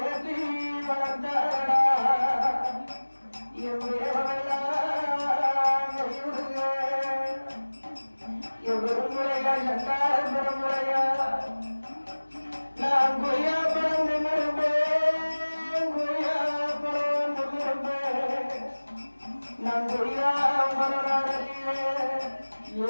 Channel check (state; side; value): inverted; both; correlation -1.00